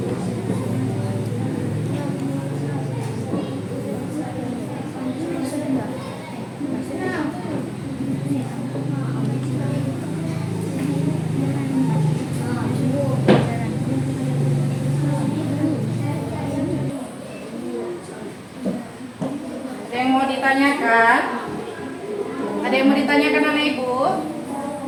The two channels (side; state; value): both; identical; correlation 1.00